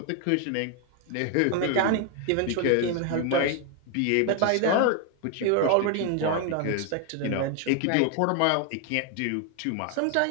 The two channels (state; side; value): different; both; correlation 0.01